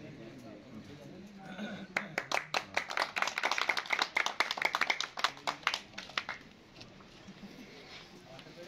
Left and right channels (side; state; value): both; identical; correlation 1.00